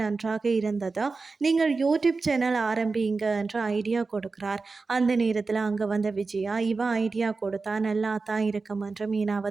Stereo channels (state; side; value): quieter; left; 4.1 dB